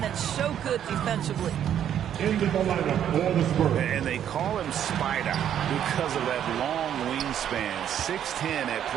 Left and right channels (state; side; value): quieter; left; 9.9 dB